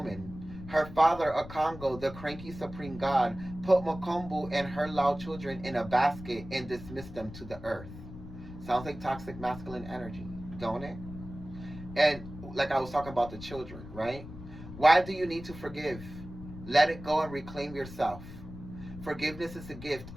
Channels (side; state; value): left; noise; rumble, 13 dB below the sound